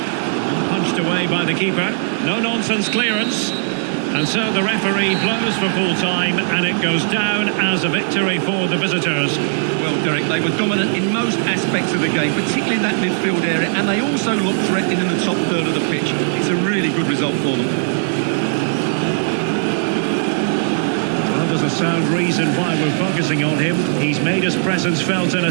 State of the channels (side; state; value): left; silent; 67 dB below the other